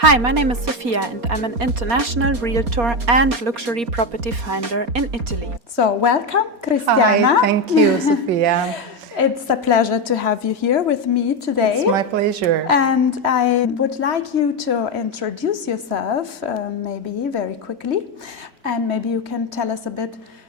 my name is Sophia and I'm an international realtor and luxury property finder in Italy. So welcome, Cristiana. Hi, thank you, Sophia. It's a pleasure to have you here with me today. It's my pleasure. And I would like you to introduce yourself, maybe very quickly, and maybe you can tell us a bit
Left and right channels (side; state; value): left; late; 4.3 ms